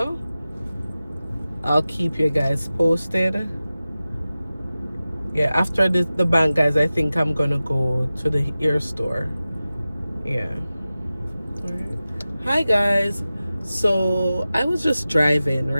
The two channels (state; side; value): inverted; both; correlation -0.95